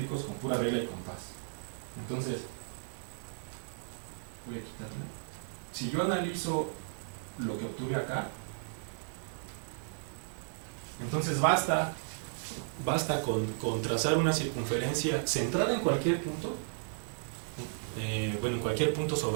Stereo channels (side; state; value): left; silent; digital silence